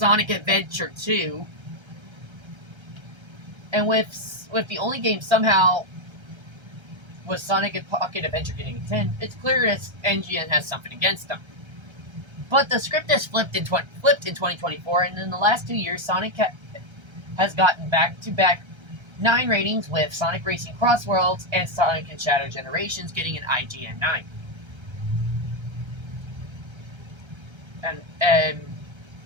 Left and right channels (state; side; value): late; left; 1.3 ms